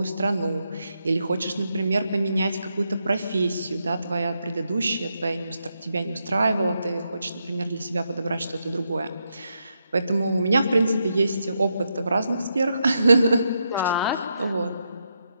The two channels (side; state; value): both; inverted; correlation -0.82